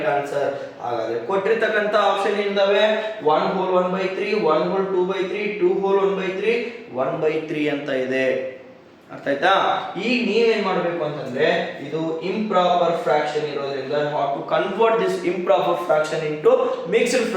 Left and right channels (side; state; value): both; identical; correlation 1.00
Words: ಆನ್ಸರ್. ಹಾಗಾದ್ರೆ ಕೊಟ್ಟಿರ್ತಕ್ಕಂತ ಆಪ್ಷನ್ ಏನಿದಾವೆ 1 whole 1/3 1 whole 2/3 2 whole 1/3 1/3 ಅಂತ ಇದೆ. ಅರ್ಥ ಆಯ್ತಾ? ಈಗ ನೀವೇನ್ ಮಾಡಬೇಕು ಅಂತಂದ್ರೆ ಇದು ಇಂಪ್ರಾಪರ್ ಫ್ರಾಕ್ಷನ್ ಇರೋದ್ರಿಂದ how to convert this improper fraction into mixed